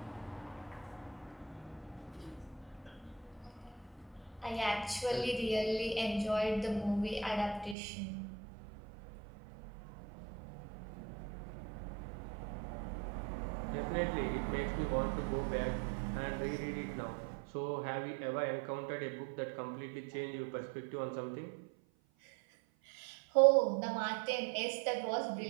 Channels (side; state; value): left; drops out; at 7.8 s